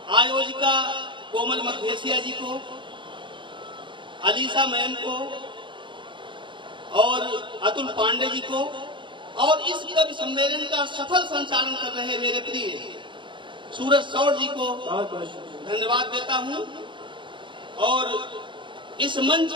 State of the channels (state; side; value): late; left; 0.23 ms